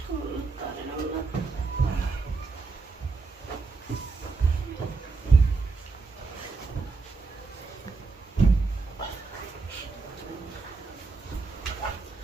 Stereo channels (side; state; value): left; quieter; 4.3 dB